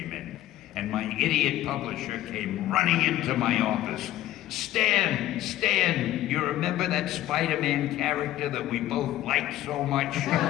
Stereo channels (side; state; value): right; quieter; 14.2 dB